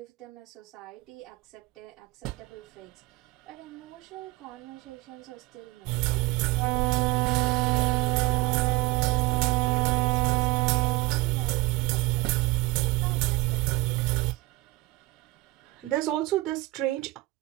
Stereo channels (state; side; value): quieter; left; 20.5 dB